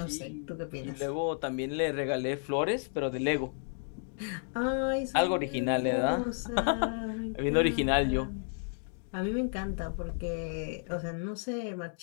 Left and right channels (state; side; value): silent; right; 56 dB below the other